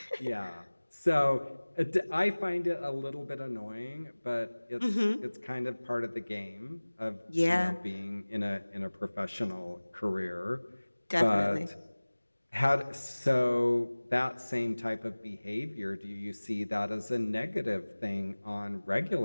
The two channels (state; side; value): inverted; both; correlation -1.00